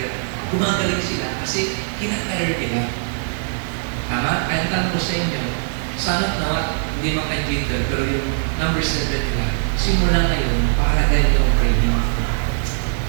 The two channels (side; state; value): left; silent; digital silence